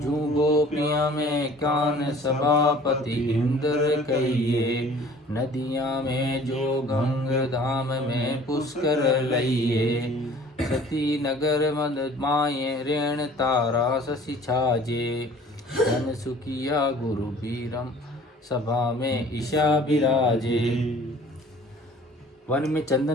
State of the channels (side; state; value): both; normal; correlation 0.49